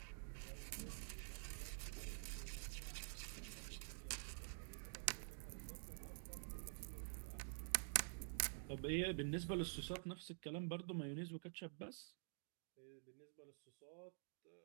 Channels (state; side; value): silent; left; digital silence